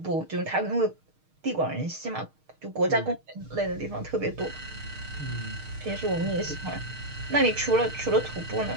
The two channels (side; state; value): left; late; 6.5 ms